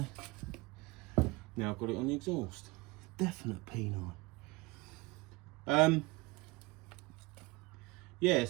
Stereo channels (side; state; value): left; quieter; 23.6 dB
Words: Now I've got it on the exhaust. Definite peni. Yeah,